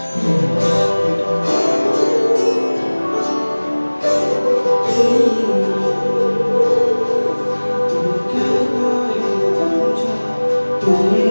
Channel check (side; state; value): both; inverted; correlation -1.00